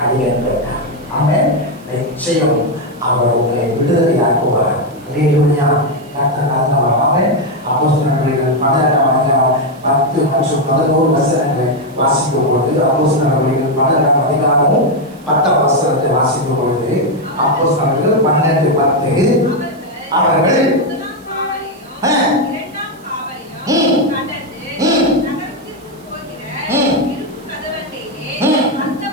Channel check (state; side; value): noise; right; hiss, 28 dB below the sound